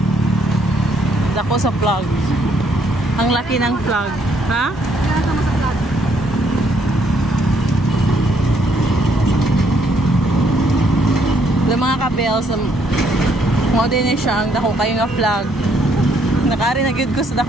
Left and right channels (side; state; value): both; normal; correlation 0.70